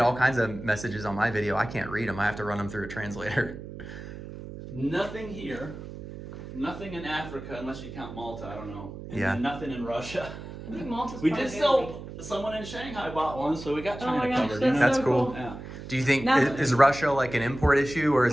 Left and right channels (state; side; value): noise; right; hum, 11 dB below the sound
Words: all kinds of messages on my video. I can't read them. I have to run them through a translator. Nothing here. Nothing in Africa, unless you count Malta. I don't know. And Yeah. then nothing in Russia. I think Malta's We part did of sell. Someone in Shanghai bought one, so we got Oh China my gosh, covered. that's That's so cool. cool. Yeah. Do you think, Now- is Russia like an import issue, or